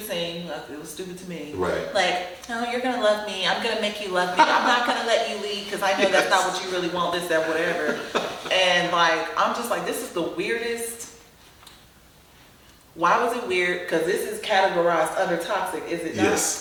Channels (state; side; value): identical; both; correlation 1.00